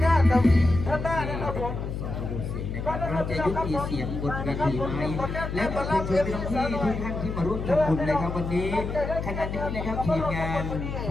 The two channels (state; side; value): noise; left; hum, 5 dB below the sound